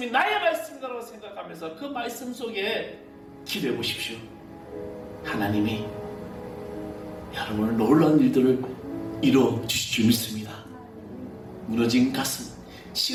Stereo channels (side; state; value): both; identical; correlation 1.00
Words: 나의 말씀이라고 생각하면서 그 말씀 속에 기도해 보십시오. 하나님이 여러분을 놀라운 일들을 이루어 주실 줄 믿습니다. 무너진 가슴,